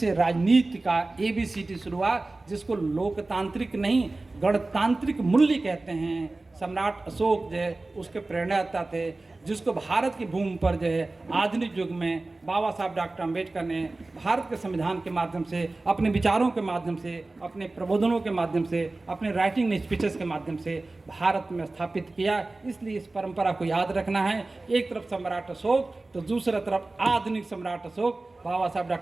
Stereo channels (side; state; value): left; quieter; 3.2 dB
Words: राजनीति का ABCD शुरू हुआ, जिसको लोकतांत्रिक नहीं गणतांत्रिक मूल्य कहते हैं। सम्राट अशोक जो है उसके प्रेरणादाता थे, जिसको भारत की भूमि पर जो है आधुनिक युग में बाबा साहब डॉक्टर अम्बेडकर ने भारत के संविधान के माध्यम से, अपने विचारों के माध्यम से, अपने प्रबोधनों के माध्यम से, अपने राइटिंग स्पीचेस के माध्यम से भारत में स्थापित किया। इसलिए इस परंपरा को याद रखना है। एक तरफ सम्राट अशोक तो दूसरी तरफ आधुनिक सम्राट अशोक, बाबा साहब